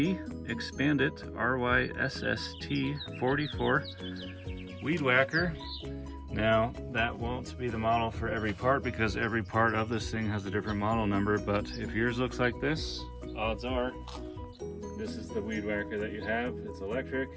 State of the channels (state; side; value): identical; both; correlation 1.00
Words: Expandit RYSST44 Weedwacker. Now that won't be the model for every part because every part of this thing has a different model number, but if yours looks like this, odds are this is the Weedwacker that you have. It's electric,